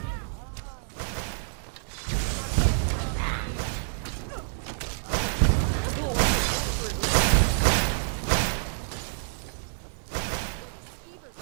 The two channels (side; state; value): left; silent; digital silence